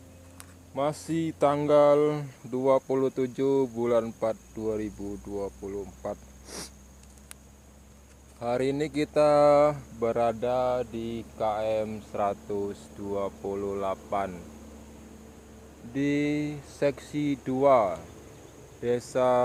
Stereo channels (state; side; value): identical; both; correlation 1.00